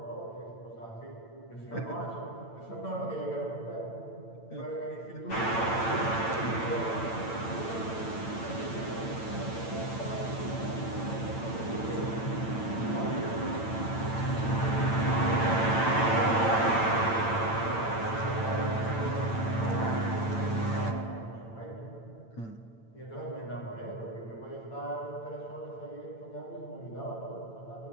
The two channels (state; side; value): late; right; 8.9 ms